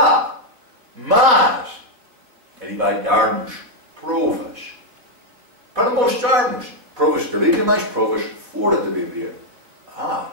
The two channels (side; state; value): left; late; 4.2 ms